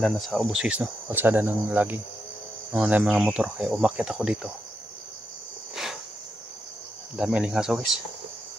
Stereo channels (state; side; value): normal; both; correlation 0.83